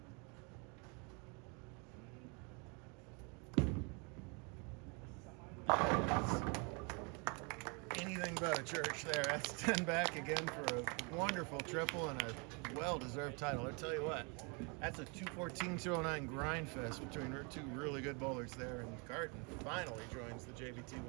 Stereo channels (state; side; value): quieter; left; 33.3 dB